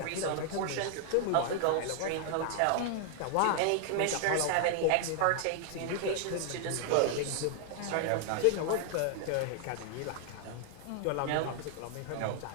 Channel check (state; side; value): different; both; correlation 0.00